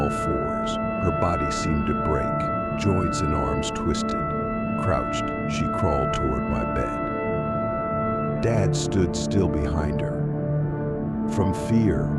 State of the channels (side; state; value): both; identical; correlation 1.00